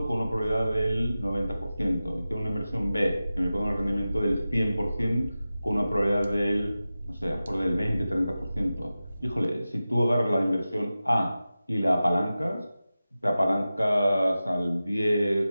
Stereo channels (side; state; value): both; inverted; correlation -0.95